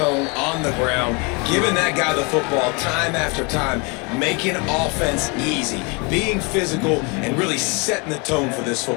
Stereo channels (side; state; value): right; quieter; 31.1 dB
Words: on the ground, giving that guy the football time after time, making offense easy, being physical, and really setting the tone for this